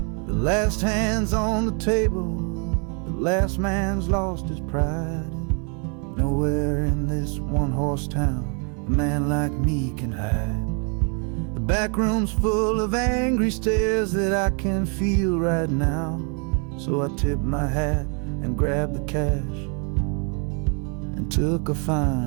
The last hand's on the table, the last man's lost his pride. Nowhere in this one-horse town a man like me can hide. The back room's full of angry stares that I can feel right now. So I tipped my hat and grabbed the cash and took a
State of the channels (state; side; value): quieter; left; 37.6 dB